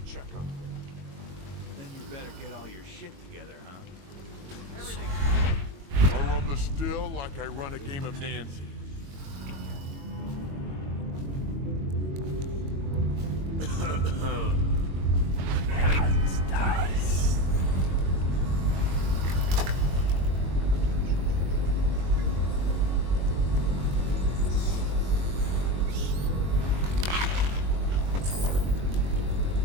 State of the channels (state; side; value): late; left; 22 ms